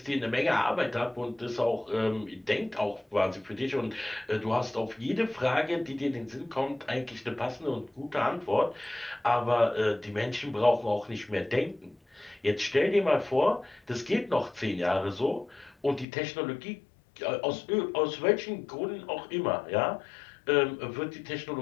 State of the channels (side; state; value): right; drops out; at 16.1 s